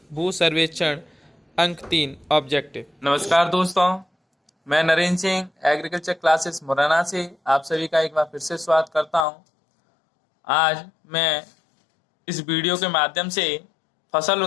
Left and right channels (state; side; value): drops out; right; at 9.2 s